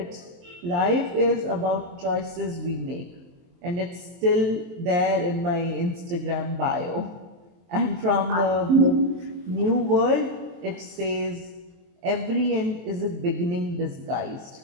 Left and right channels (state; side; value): late; left; 23 ms